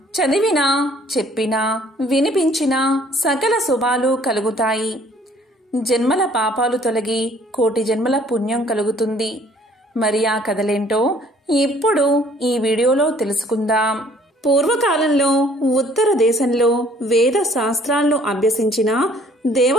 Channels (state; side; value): normal; both; correlation 0.58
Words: చదివినా, చెప్పినా, వినిపించినా సకల శుభాలు కలుగుతాయి. జన్మల పాపాలు తొలగి కోటి జన్మల పుణ్యం కలుగుతుంది. మరి ఆ కథలేంటో ఇప్పుడు ఈ వీడియోలో తెలుసుకుందాం. పూర్వకాలంలో ఉత్తర దేశంలో వేద శాస్త్రాలను అభ్యసించిన